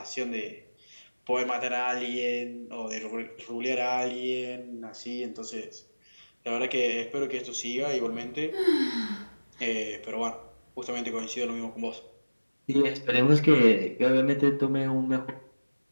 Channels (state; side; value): inverted; both; correlation -1.00